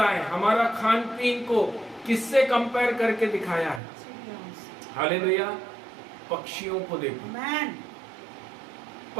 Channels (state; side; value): drops out; left; at 3.8 s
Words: हमारा खान पीन को किससे कंपेयर करके दिखाया है? हालेलुया। पक्षियों को देखो, आमेन।